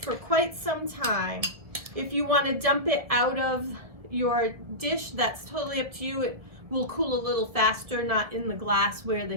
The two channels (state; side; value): late; left; 1.8 ms